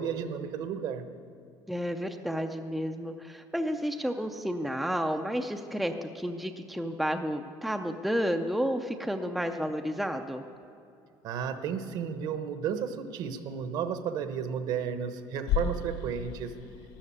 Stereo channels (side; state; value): both; normal; correlation 0.69